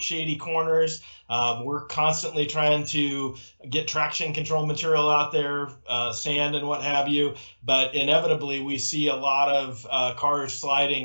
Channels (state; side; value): inverted; both; correlation -1.00